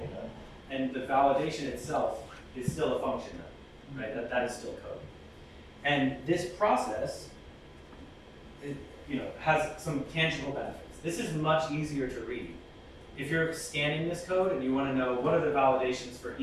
And the validation itself is still a function, right? That is still code. And this process has some tangible benefits. This is much easier to read. If you're scanning this code and you want to know what are the validations for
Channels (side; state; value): both; identical; correlation 1.00